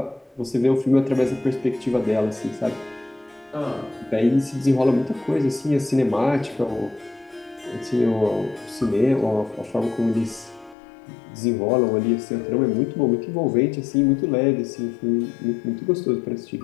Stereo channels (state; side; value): drops out; right; at 10.8 s